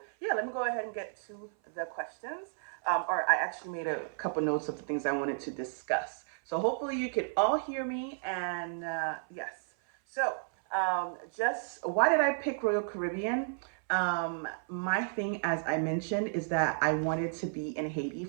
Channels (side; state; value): left; silent; 56 dB below the other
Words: yeah, let me go ahead and get to the questions. Or I actually made a couple notes of the things I wanted to discuss. So hopefully you can all hear me. And yes, so just why did I pick Royal Caribbean? My thing, as I mentioned, is that I wanted to be in Haiti